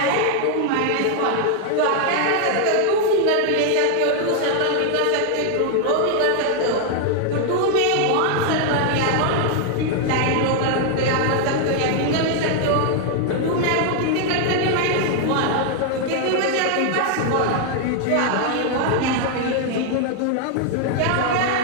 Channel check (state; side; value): different; both; correlation 0.00